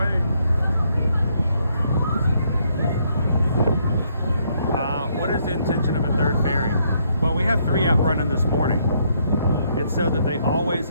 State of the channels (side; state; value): both; inverted; correlation -0.72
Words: What is the intention of a third ferry? Well, we have 3 out running this morning. It's so that they always